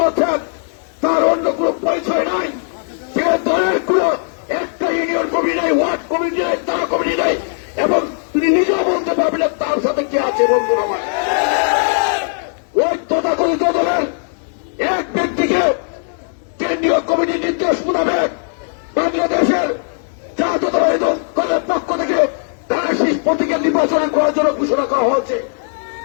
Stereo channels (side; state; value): right; silent; digital silence